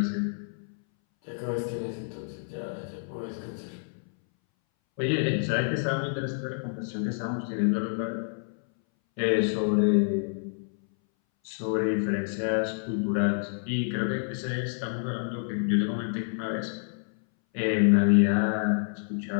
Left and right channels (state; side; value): silent; right; 59 dB below the other